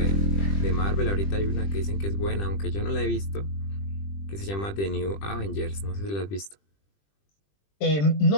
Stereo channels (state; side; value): late; right; 20 ms